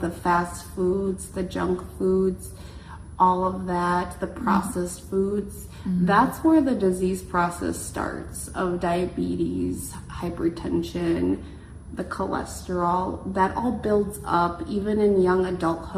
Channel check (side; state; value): both; identical; correlation 1.00